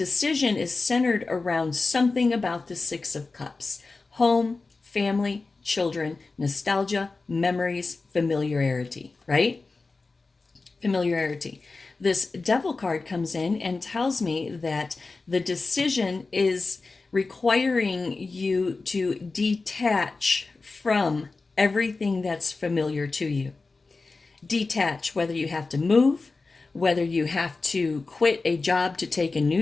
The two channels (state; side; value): quieter; right; 3.8 dB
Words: is centered around something about the Six of Cups: home, family, children, nostalgia, memories, familiarity, right? Familiarity. This Devil card comes in and tells me that the decision is requiring you to detach from everything that's familiar to you. Detach, whether you have to move, whether you have to quit a job to take a